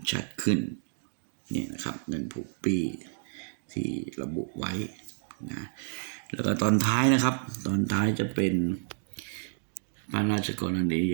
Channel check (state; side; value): silent; left; digital silence